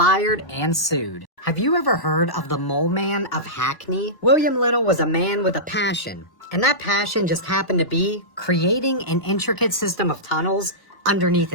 and sued. Have you ever heard of the Mole Man of Hackney? William Little was a man with a passion, and that passion just happened to be creating an intricate system of tunnels underneath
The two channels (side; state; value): right; late; 1.1 ms